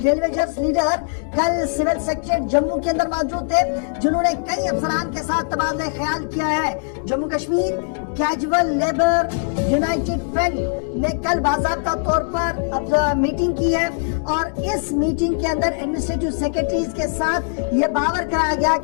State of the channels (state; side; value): silent; right; digital silence